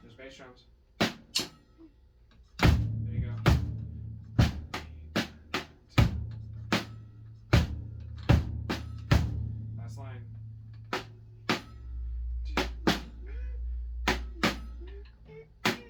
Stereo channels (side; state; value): both; identical; correlation 1.00